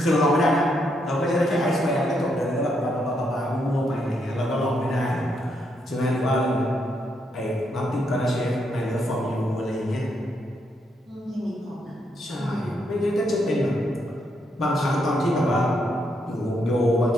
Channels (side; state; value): both; normal; correlation 0.77